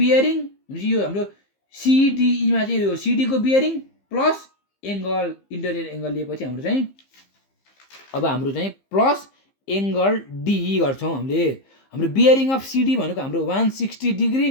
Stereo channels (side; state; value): right; late; 15 ms